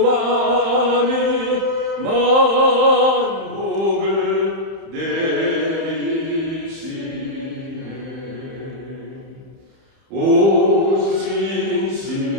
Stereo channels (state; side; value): late; left; 31 ms